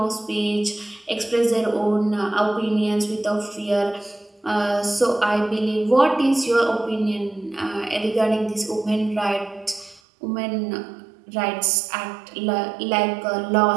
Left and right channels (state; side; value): drops out; left; at 10.0 s